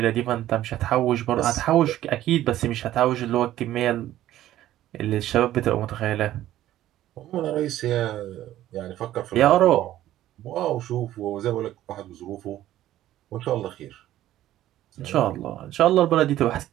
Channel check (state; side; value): quieter; left; 13.5 dB